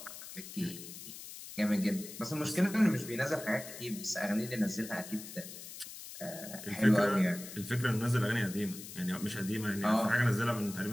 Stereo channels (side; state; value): left; noise; hiss, 12 dB below the sound